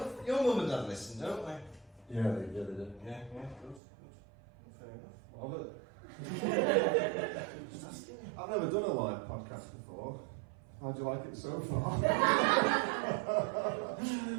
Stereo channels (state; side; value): drops out; left; at 3.8 s